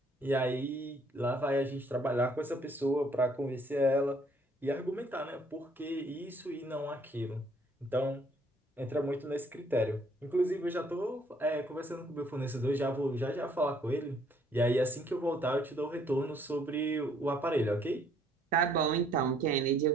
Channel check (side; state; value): both; normal; correlation 0.64